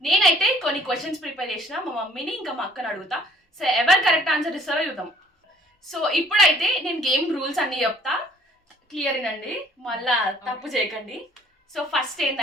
నేనైతే కొన్ని క్వశ్చన్స్ ప్రిపేర్ చేసిన, మా మమ్మీని ఇంకా మా అక్కని అడుగుతా. సో ఎవరు కరెక్ట్ ఆన్సర్ ఇస్తారో చూద్దాం. సో ఇప్పుడైతే నేను గేమ్ రూల్స్ అన్ని చెప్తా, క్లియర్ వినండి, మళ్ళా తప్పు చేయకండి. సో ఫస్ట్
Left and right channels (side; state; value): both; normal; correlation 0.58